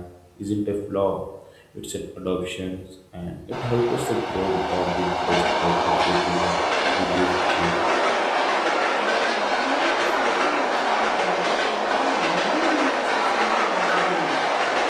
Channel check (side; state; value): both; identical; correlation 1.00